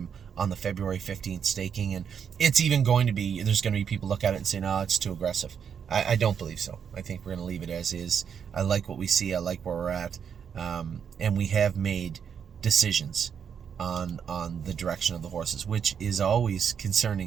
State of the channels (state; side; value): quieter; left; 7.5 dB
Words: on the February 15th staking, and it's even going to be, there's going to be people look at it and say, no, it's too aggressive. I don't believe so. I think we're going to leave it as is. I like what we see. I like where we're at. And we have made decisions on the direction of the horses, which is always